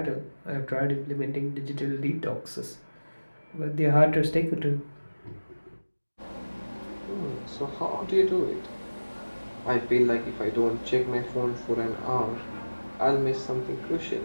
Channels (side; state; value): both; inverted; correlation -1.00